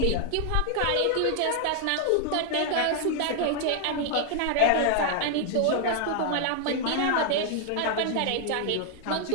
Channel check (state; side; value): different; both; correlation 0.00